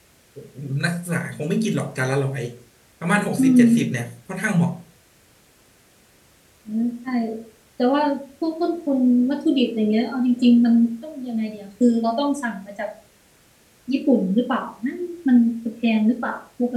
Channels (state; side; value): identical; both; correlation 1.00